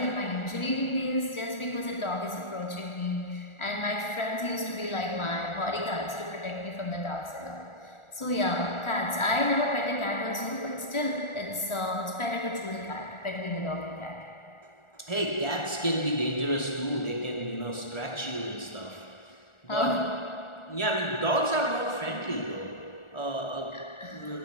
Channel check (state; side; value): late; right; 1.4 ms